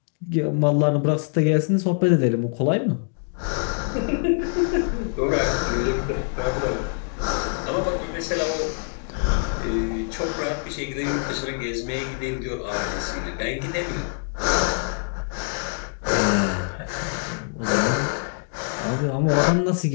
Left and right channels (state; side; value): silent; right; 62 dB below the other